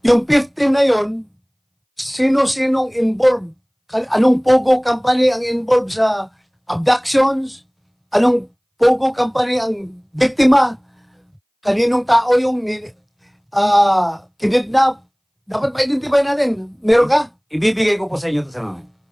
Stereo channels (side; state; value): both; identical; correlation 1.00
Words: Yung 15 na yon, sino-sinong involved? Anong POGO company ang involved sa abductions? Anong POGO company ang biktima? Kaninong tao yung kidnap? Dapat ma-identify natin. Meron ka? Ibibigay ko po sa inyo ito sa mga.